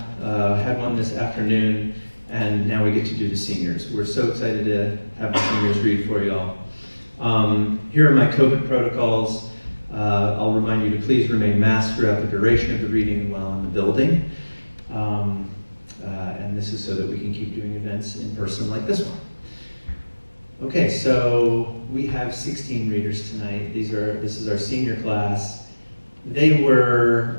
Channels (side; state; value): both; inverted; correlation -1.00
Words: Had one this afternoon, and now we get to do the seniors. We're so excited to have the seniors read for y'all. Here are my COVID protocols. I'll remind you to please remain masked throughout the duration of the reading while in the building. And this is so that we can keep doing events in person like this one. Okay, so we have 16 readers tonight. This is our senior class. They were